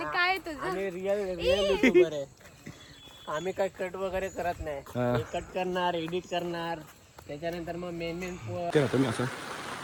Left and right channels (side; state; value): both; identical; correlation 1.00